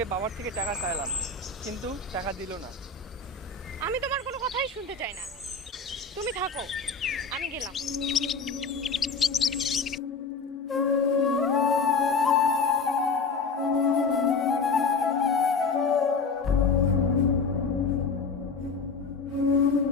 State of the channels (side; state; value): right; quieter; 4.5 dB